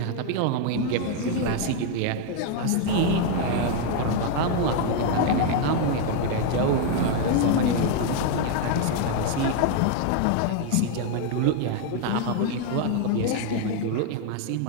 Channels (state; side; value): different; both; correlation 0.00